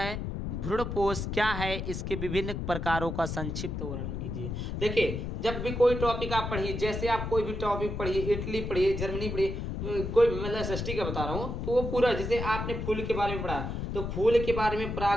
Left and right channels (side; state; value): left; noise; rumble, 4 dB below the sound